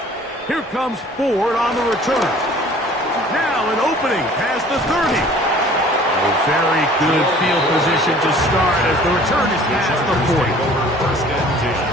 Here comes Ford on the return. Now an opening past the 30. A very good field position to start as the return is past the 40. First and 10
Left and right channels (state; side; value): normal; both; correlation 0.50